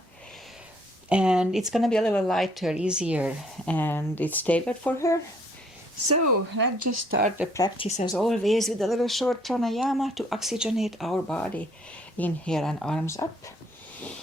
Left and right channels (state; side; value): normal; both; correlation 0.64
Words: And it's going to be a little lighter, easier, and it's tailored for her. So let's just start the practice as always with a little short pranayama to oxygenate our body. Inhale and arms up.